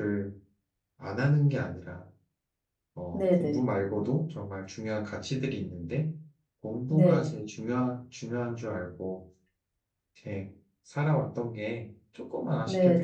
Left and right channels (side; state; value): both; identical; correlation 1.00